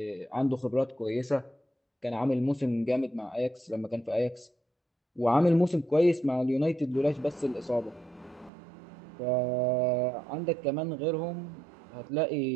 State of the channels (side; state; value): left; drops out; at 8.5 s